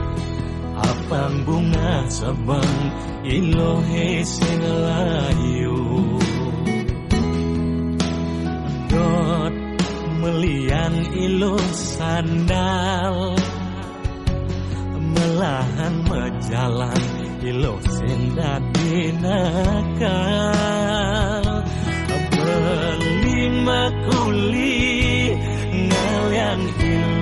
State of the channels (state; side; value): identical; both; correlation 1.00